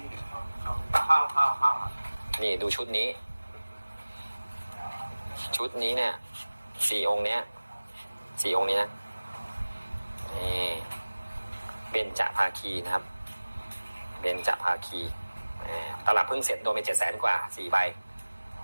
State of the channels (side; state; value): both; inverted; correlation -1.00